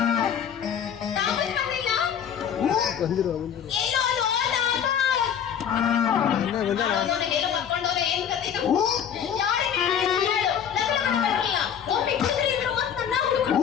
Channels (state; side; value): quieter; right; 8.5 dB